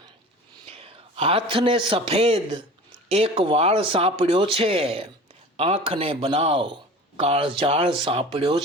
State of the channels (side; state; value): both; normal; correlation 0.39